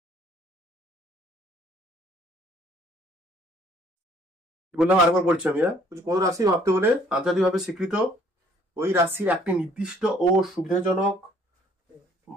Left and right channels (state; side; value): normal; both; correlation 0.60